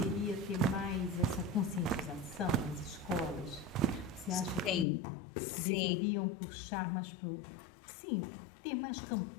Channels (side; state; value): right; drops out; at 4.9 s